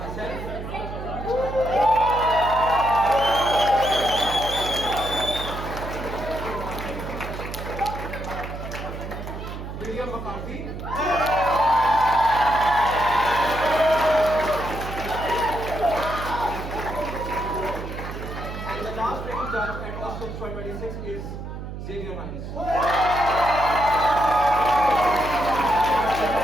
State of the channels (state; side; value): noise; right; hum, 8 dB below the sound